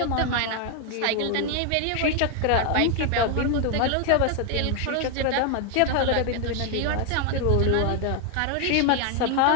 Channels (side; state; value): both; different; correlation 0.00